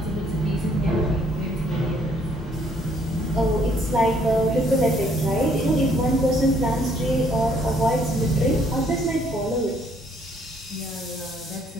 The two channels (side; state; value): both; normal; correlation 0.66